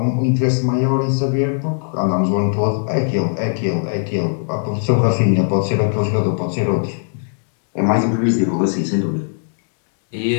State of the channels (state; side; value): silent; right; digital silence